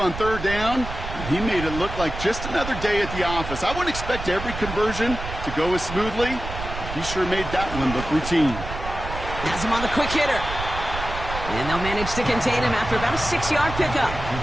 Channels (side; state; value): right; noise; rumble, 8 dB below the sound